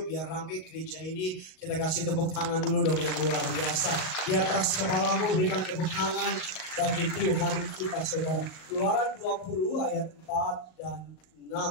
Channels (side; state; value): right; late; 38 ms